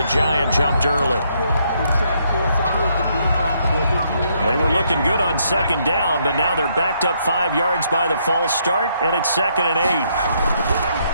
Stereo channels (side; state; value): both; inverted; correlation -0.73